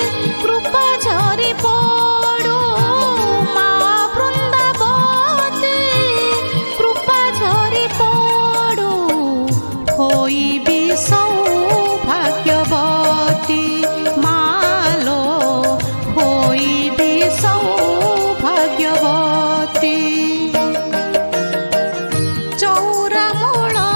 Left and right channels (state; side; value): inverted; both; correlation -1.00